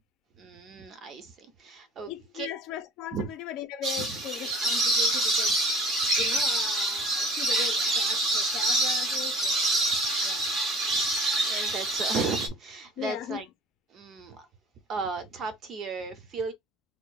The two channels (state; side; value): normal; both; correlation 0.46